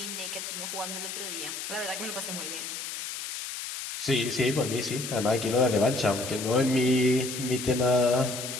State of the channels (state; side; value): noise; left; hiss, 6 dB below the sound